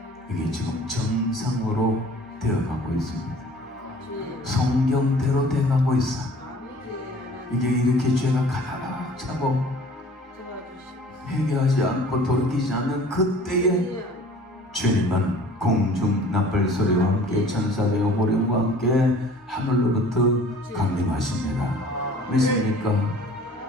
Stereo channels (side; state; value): both; normal; correlation 0.49